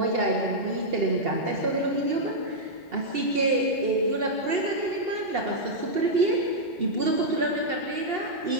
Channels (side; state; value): left; late; 2.7 ms